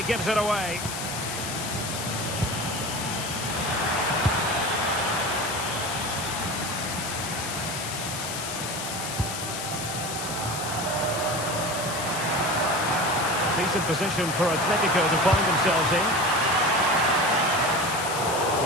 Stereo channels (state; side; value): noise; left; hiss, 6 dB below the sound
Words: gives it away. Decent position for Atletico to find themselves in.